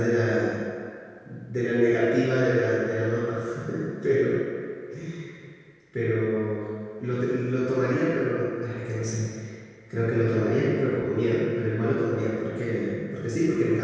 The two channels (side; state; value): both; identical; correlation 1.00